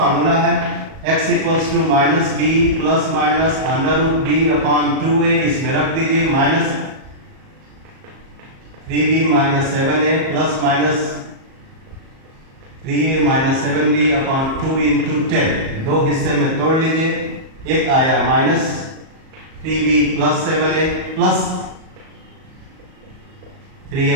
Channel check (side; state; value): left; late; 37 ms